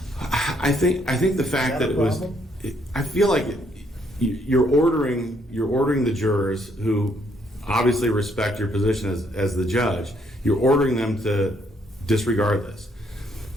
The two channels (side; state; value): both; normal; correlation 0.70